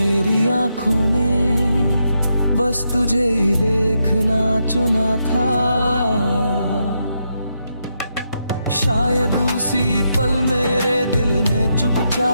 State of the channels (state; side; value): inverted; both; correlation -0.82